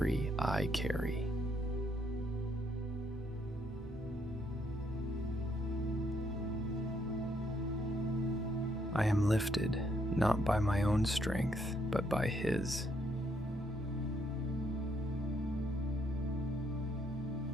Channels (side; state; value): right; noise; rumble, 25 dB below the sound